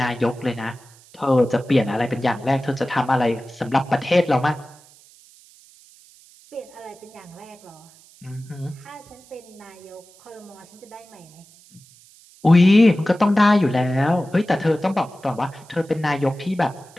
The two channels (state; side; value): noise; right; hiss, 26 dB below the sound